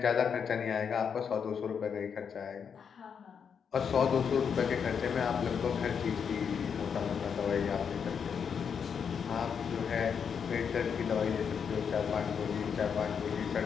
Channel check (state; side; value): quieter; right; 6.9 dB